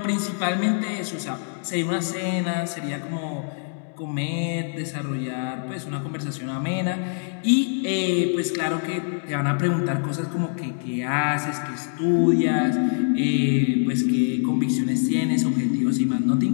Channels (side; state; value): right; silent; digital silence